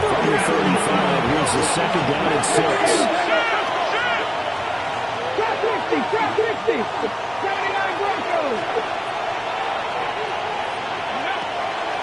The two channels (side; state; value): both; identical; correlation 1.00